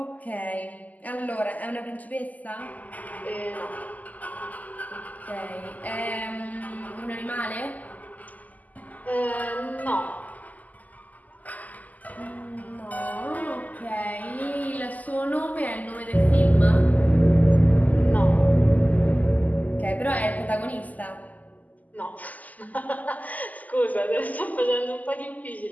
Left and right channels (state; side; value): late; right; 0.079 ms